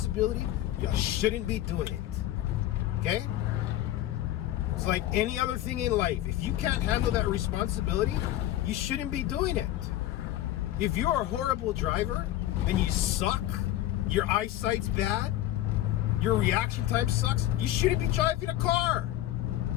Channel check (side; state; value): right; quieter; 13.9 dB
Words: you shouldn't be doing it. Okay? It's like any other thing in life. If you can't handle that responsibility, you shouldn't be doing it. If you're a horrible driver and you suck, your eyesight's bad, your reaction time sucks, you shouldn't be driving a car.